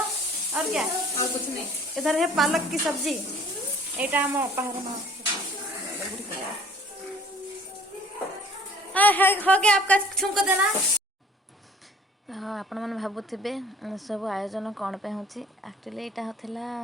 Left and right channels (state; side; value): normal; both; correlation 0.52